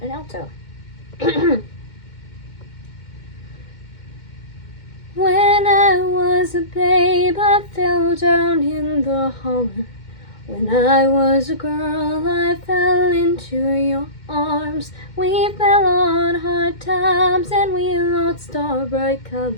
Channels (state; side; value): late; right; 2.1 ms